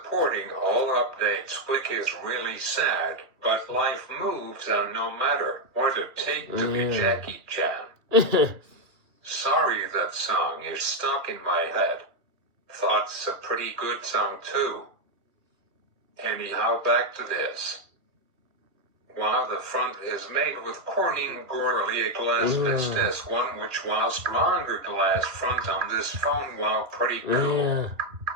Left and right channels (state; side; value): late; left; 2.4 ms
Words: all updates, which is really sad, but life moves on no matter what it takes to be Jackie Chan. Sorry, that song is stuck in my head. Thought's a pretty good song too. Anyhow, back to this. Wow, the front is made with Corning Gorilla Glass Vistas 1, which was stronger glass front on this phone. Wow, pretty cool.